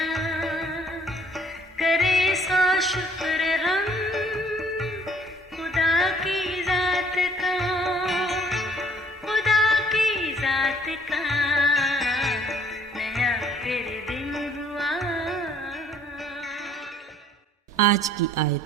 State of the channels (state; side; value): normal; both; correlation 0.60